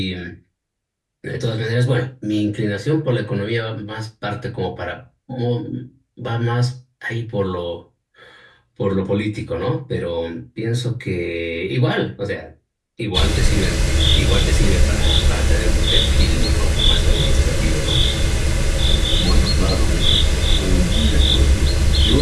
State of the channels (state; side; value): identical; both; correlation 1.00